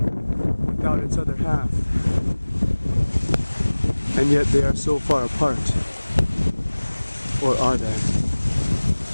without its other half, and yet they are so far apart. Or are they?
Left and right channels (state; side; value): inverted; both; correlation -1.00